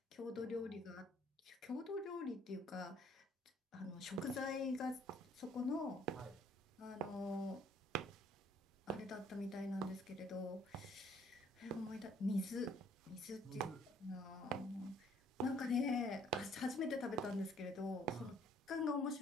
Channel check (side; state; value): both; normal; correlation 0.61